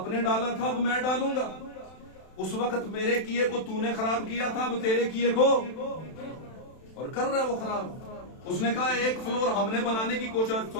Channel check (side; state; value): right; late; 32 ms